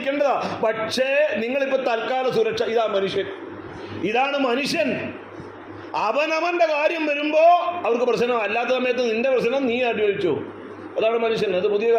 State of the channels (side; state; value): both; identical; correlation 1.00